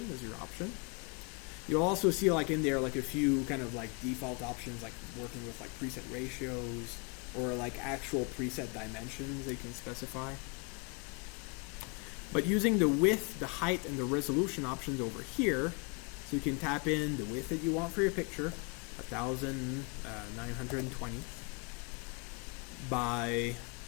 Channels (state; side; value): quieter; right; 33.2 dB